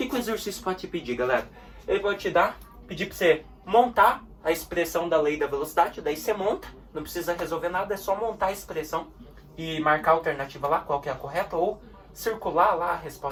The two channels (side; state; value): both; identical; correlation 1.00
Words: o exercício pode te pedir, galera? Ele pode pedir para você montar a expressão da lei da velocidade. Daí você monta, não precisa resolver nada, é só montar a expressão e marcar a alternativa lá, qual que é a correta, ou circular lá a